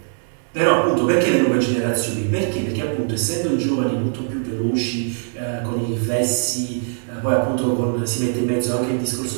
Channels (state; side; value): silent; left; digital silence